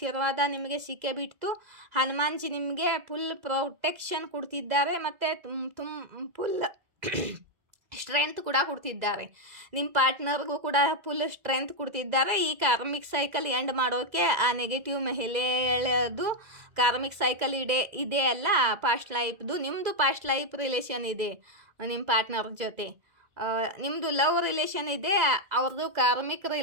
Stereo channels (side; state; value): left; late; 2.0 ms